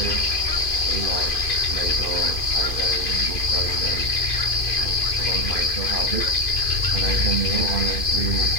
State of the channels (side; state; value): right; late; 2.5 ms